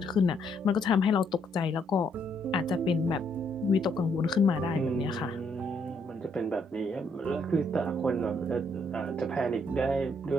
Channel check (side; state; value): both; normal; correlation 0.72